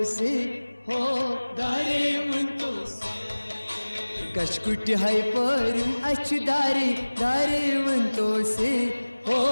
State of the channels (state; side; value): inverted; both; correlation -1.00